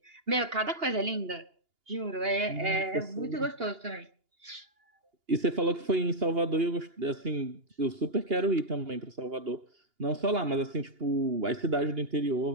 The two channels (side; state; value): left; late; 2.8 ms